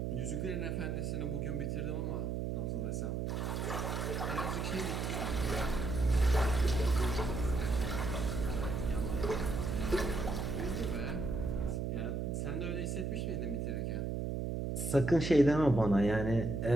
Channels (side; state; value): right; noise; hum, 1 dB below the sound